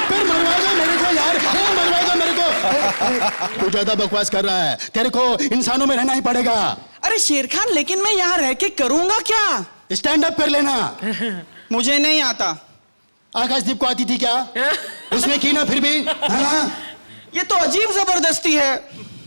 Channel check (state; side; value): inverted; both; correlation -1.00